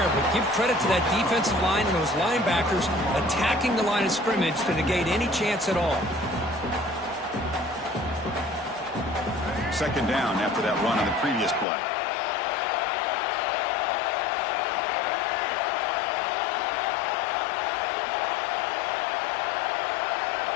but give credit to that defensive line and those linebackers attacking the line of scrimmage to negate any chance at all. Second down after that run on the previous play.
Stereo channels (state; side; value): drops out; right; at 11.7 s